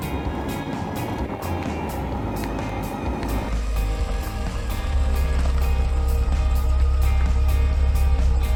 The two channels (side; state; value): both; identical; correlation 1.00